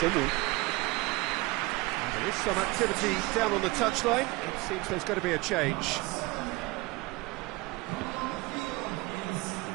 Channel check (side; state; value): left; quieter; 22.6 dB